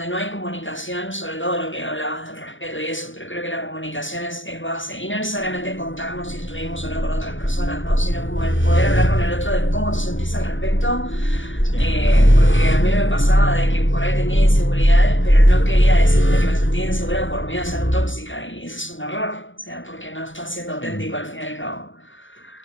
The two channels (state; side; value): late; right; 0.56 ms